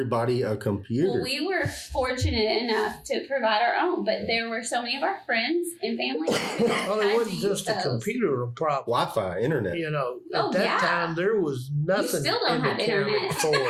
a computer. Well, we were fortunate enough to provide our own, but there were so many of our friends and family. Well, it wasn't just a computer problem. Wi-Fi, internet. You know, at that time there was nothing still don't in the have county internet. for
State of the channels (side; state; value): both; identical; correlation 1.00